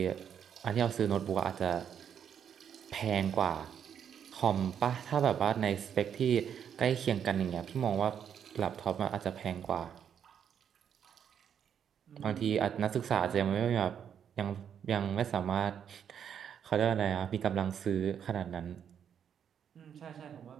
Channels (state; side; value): quieter; left; 8.4 dB